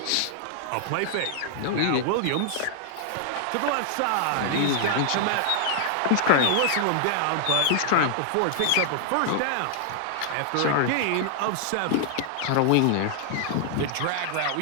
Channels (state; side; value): different; both; correlation -0.01